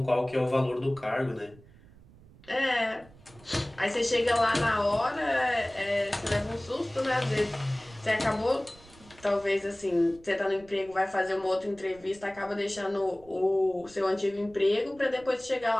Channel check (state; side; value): noise; right; rumble, 24 dB below the sound